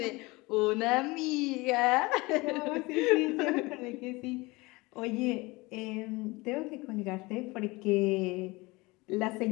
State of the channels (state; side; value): quieter; right; 23.3 dB